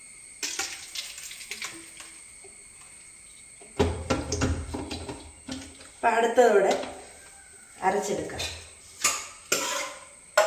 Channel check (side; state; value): both; identical; correlation 1.00